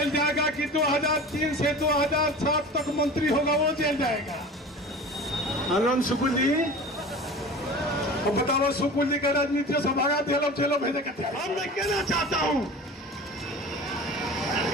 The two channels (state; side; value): normal; both; correlation 0.37